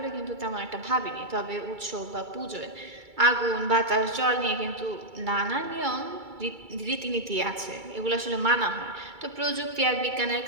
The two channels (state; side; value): late; left; 2.3 ms